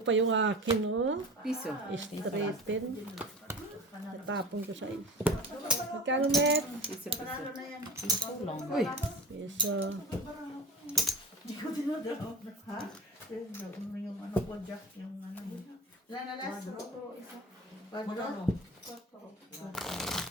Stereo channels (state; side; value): normal; both; correlation 0.35